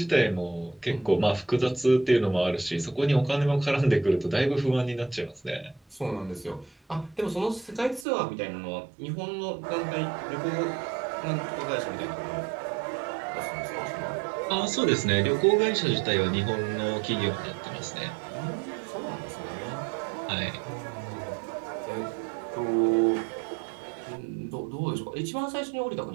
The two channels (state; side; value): drops out; left; at 8.1 s